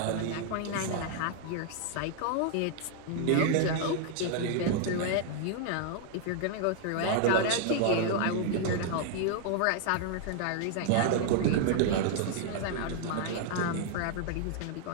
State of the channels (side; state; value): both; different; correlation 0.00